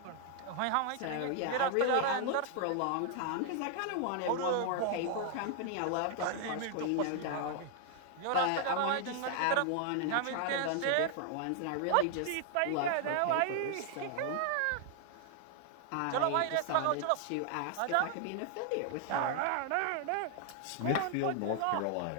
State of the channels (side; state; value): both; different; correlation 0.00